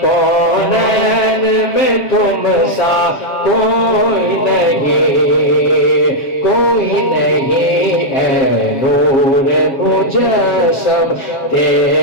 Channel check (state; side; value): late; right; 7.6 ms